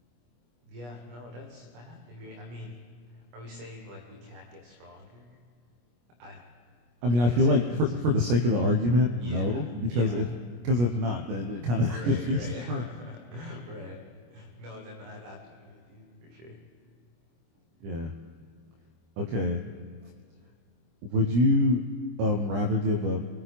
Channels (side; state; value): left; late; 25 ms